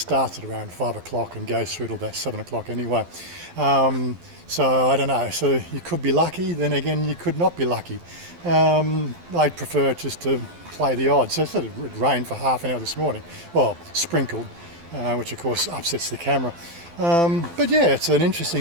at around 5 o'clock and goes through till about 7 o'clock anyway. So I don't know, so you could be lucky, then again you could not be lucky. I'd prefer just to play the odds. So it rained for half an hour this morning, well, sprinkled, which of course upsets the camera. But yeah, it's an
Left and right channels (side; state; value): left; late; 12 ms